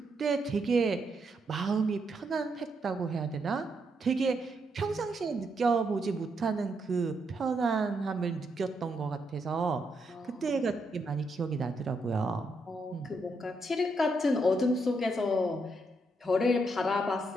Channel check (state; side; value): normal; both; correlation 0.79